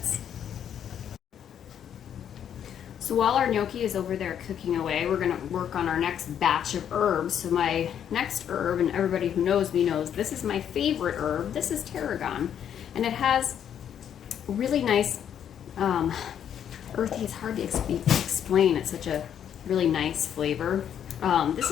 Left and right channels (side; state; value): right; quieter; 9.2 dB